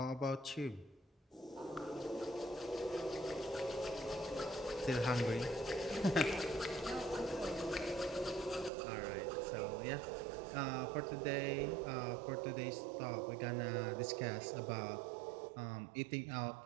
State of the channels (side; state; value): left; drops out; at 8.7 s